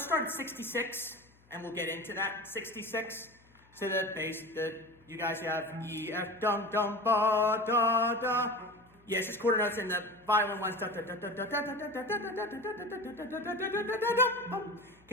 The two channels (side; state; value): left; noise; hum, 30 dB below the sound